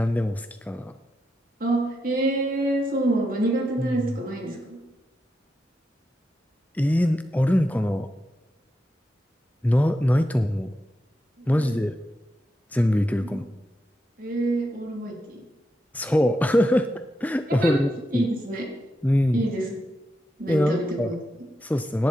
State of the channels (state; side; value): normal; both; correlation 0.86